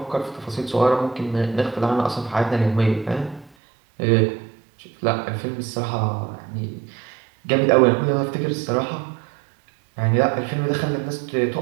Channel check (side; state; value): left; drops out; at 3.5 s